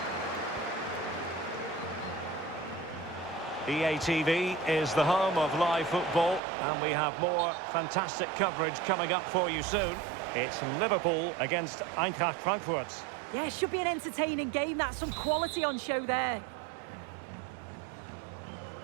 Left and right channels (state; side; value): drops out; left; at 6.4 s